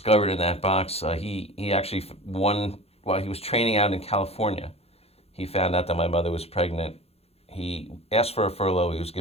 in that box. He actually while he was training out in California, he found out that my mother was pregnant. He asked for a furlough. He was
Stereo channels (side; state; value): right; late; 0.29 ms